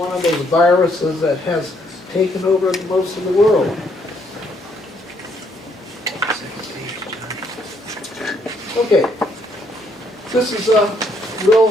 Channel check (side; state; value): both; normal; correlation 0.70